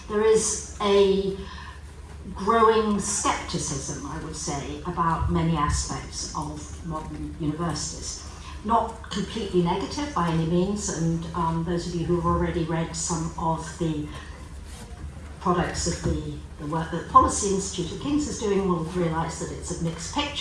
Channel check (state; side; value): identical; both; correlation 1.00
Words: there is a growing scepticism, I would say, about many aspects of modern universities. Not completely negative by any means, and those of you who have already read some of the products of the work that the Policy Institute of King's is doing will realise that it's a mixed